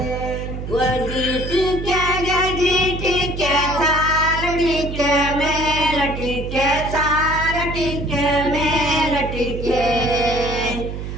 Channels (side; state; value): right; noise; hum, 7 dB below the sound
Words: ಜಿಟಿಕೆ ಜಿಟಿಕೆ ಸಾಲ ಟಿಕೆ ಮೇಲ ಟಿಕೆ ಸಾಲ ಟಿಕೆ ಮೇಲ ಟಿಕೆ